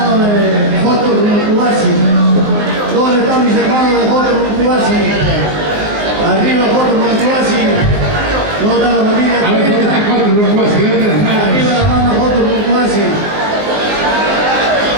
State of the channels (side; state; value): left; late; 19 ms